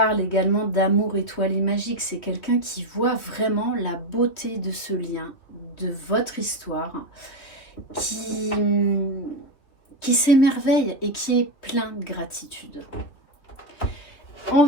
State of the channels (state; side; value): late; right; 3.1 ms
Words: également d'amour étoilé magique. C'est quelqu'un qui voit vraiment la beauté de ce lien, de votre histoire, qui s'émerveille et qui est plein de gratitude. On